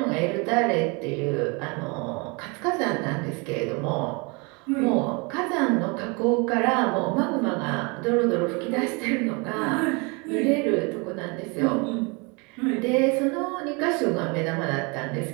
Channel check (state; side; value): quieter; left; 30.2 dB